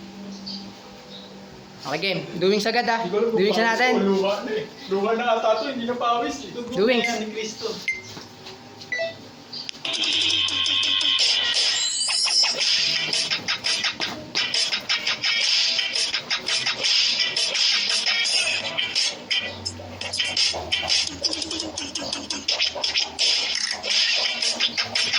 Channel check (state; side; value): identical; both; correlation 1.00